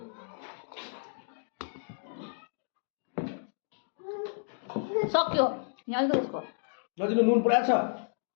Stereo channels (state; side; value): silent; right; digital silence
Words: सक्यो यहाँ अलिकति यसको नजिक नुन पुरा छ